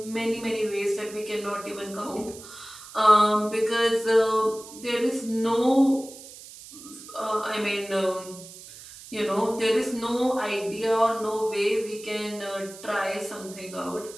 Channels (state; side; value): noise; right; hiss, 16 dB below the sound